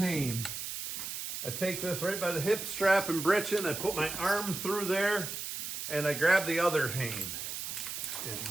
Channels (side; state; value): right; noise; hiss, 6 dB below the sound